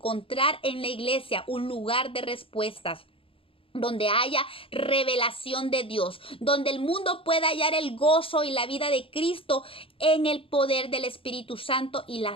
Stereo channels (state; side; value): late; right; 0.26 ms